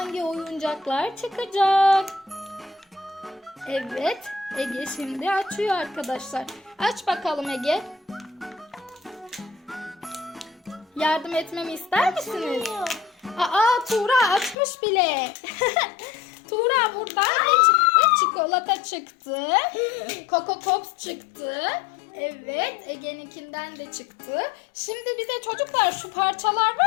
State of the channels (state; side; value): drops out; right; at 14.6 s